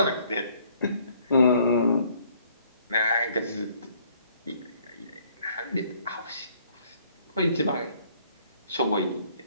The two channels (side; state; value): both; inverted; correlation -0.63